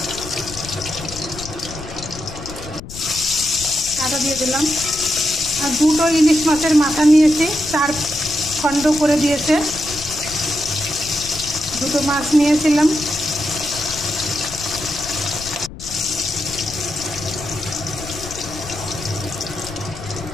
আদা দিয়ে দিলাম। আর দুটো ইলিশ মাছের মাথা নিয়েছি, 4 খণ্ড করে দিয়েছে। দুটো মাছ নিয়েছিলাম।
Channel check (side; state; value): left; noise; rumble, 13 dB below the sound